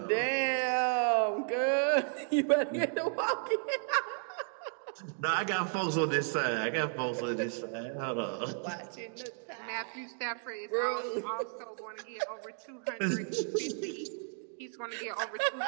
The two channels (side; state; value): left; silent; 55 dB below the other